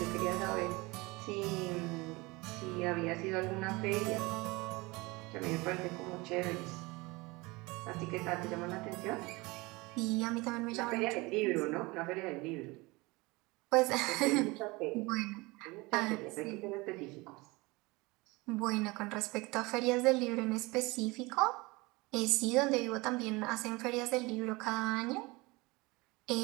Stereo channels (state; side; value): quieter; left; 23.7 dB